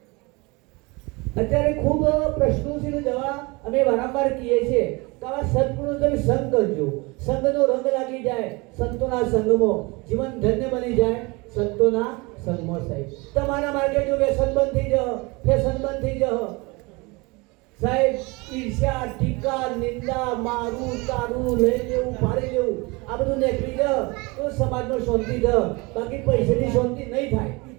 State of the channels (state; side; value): quieter; left; 26.0 dB